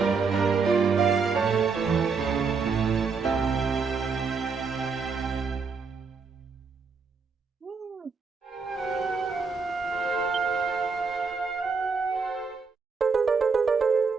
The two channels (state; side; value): quieter; left; 5.0 dB